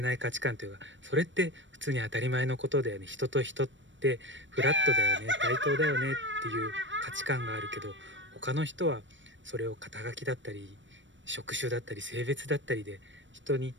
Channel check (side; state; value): left; late; 0.54 ms